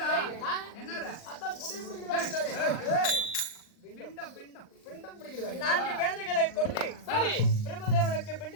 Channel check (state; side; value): late; right; 39 ms